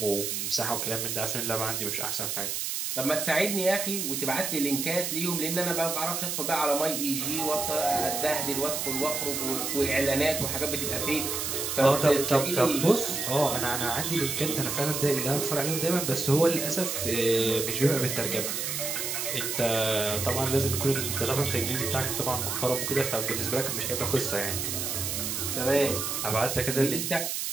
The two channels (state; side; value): noise; right; hiss, 2 dB below the sound